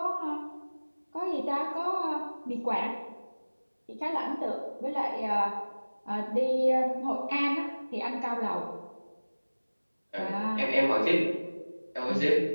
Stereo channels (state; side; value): inverted; both; correlation -1.00